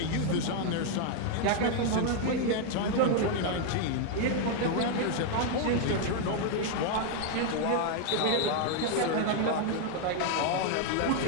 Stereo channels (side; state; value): both; different; correlation 0.00